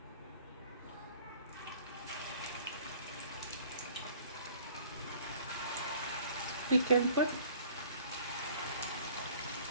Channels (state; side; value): inverted; both; correlation -0.52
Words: We can put